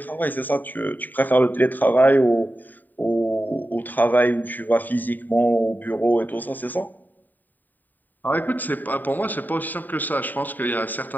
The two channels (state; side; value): late; right; 0.088 ms